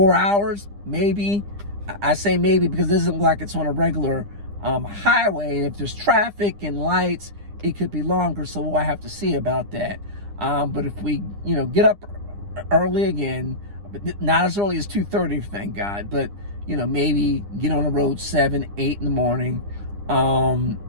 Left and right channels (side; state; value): left; late; 9.9 ms